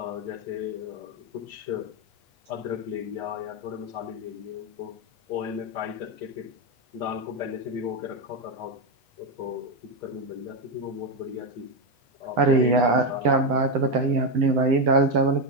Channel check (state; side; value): late; left; 8.9 ms